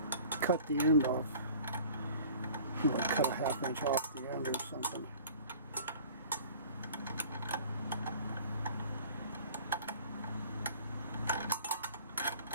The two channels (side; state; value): both; inverted; correlation -0.47